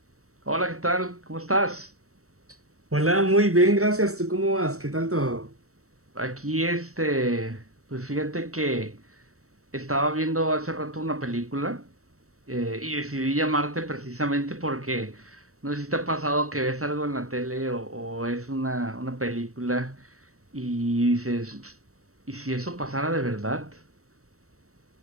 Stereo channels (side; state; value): left; late; 0.64 ms